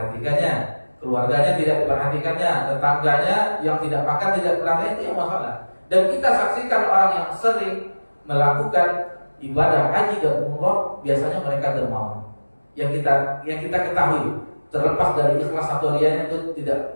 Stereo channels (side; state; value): both; inverted; correlation -1.00